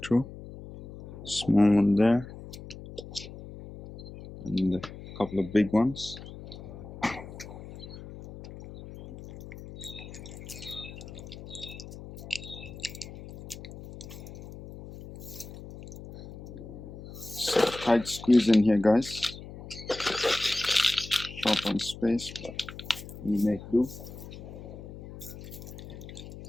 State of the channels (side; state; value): left; noise; hum, 13 dB below the sound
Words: through. Small one there, and a couple of big ones. So tight squeeze in here, guys. Short on space, but we make do.